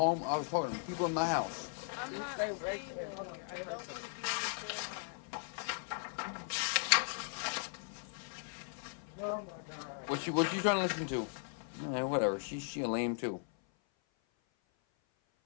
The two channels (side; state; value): right; silent; 53 dB below the other